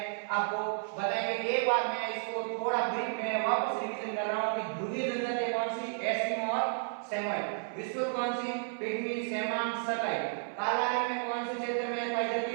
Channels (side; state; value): left; silent; 56 dB below the other